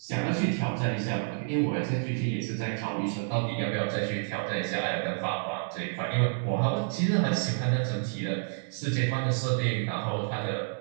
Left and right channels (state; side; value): silent; left; digital silence